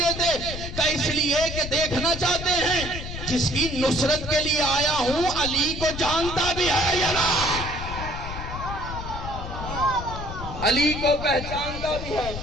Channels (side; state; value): left; noise; rumble, 7 dB below the sound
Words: کہ اس لیے کہ دیکھنا چاہتے ہیں جس کی نصرت کے لیے آیا ہوں علی کو جانتا بھی ہے یا نہ، علی کو پہچانتا بھی ہے